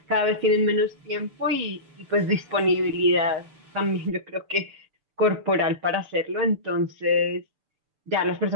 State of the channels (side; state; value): left; late; 6.8 ms